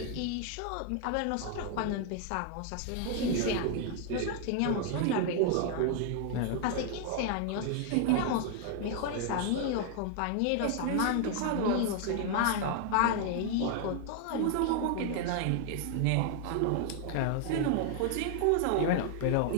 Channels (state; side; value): different; both; correlation 0.00